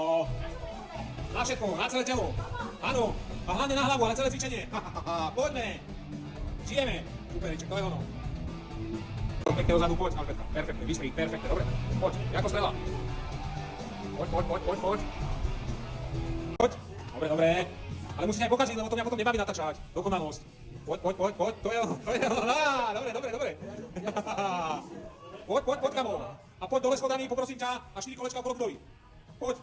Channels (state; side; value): identical; both; correlation 1.00